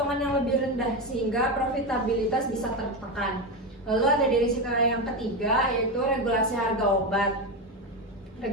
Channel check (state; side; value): normal; both; correlation 0.14